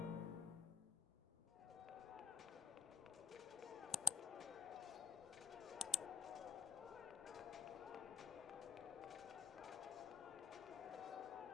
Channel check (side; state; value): right; quieter; 6.7 dB